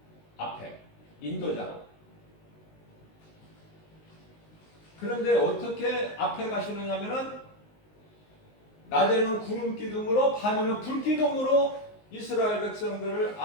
앞에 인도자로. 그런데 어떻게 앞에 가시느냐면은 낮에는 구름 기둥으로 밤에는 불 기둥으로 이스라엘 백성들을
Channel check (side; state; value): right; late; 19 ms